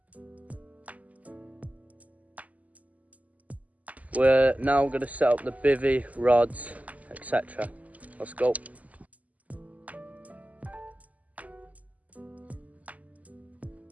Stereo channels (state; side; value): late; left; 0.074 ms